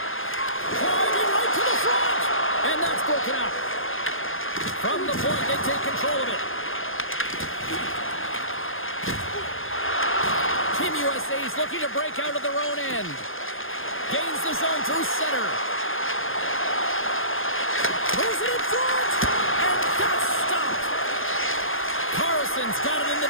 Driving right to the front. And that's broken up. From the point, they take control of it. Team USA is looking to break out of their own end. Gains the zone through center. Throws it in front. And that's stopped. Carlson's got it in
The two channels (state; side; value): late; right; 0.59 ms